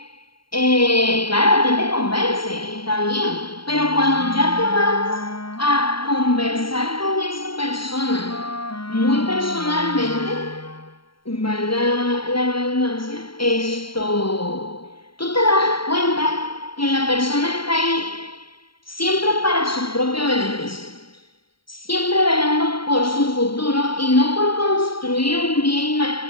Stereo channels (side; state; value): right; late; 0.73 ms